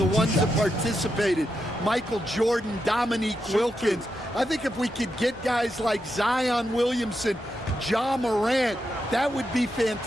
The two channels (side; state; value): both; normal; correlation 0.85